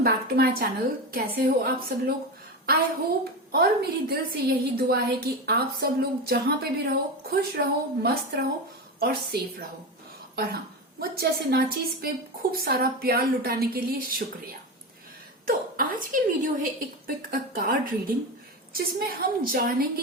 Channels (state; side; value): normal; both; correlation 0.20